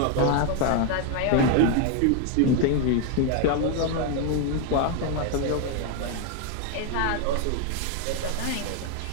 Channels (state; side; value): different; both; correlation 0.00